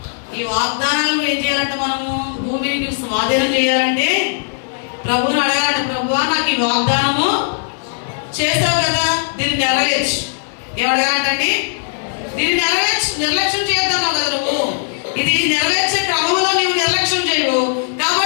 ఈ వాగ్దానాలు ఏం చేయాలంటే మనము భూమిని స్వాధీనం చేయాలంటే ప్రభువుని అడగాలంటే, ప్రభువా నాకు ఈ వాగ్దానము చేశావు కదా, దీన్ని నెరవేర్చు. ఏమడగాలంటండి? దీన్ని నెరవేర్చు. నిర్లక్ష్యం చేద్దాము కదా నువ్వు. ఇది నెరవేర్చే క్రమంలో నీవు నిర్లక్ష్యం చేయవు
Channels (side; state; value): right; silent; digital silence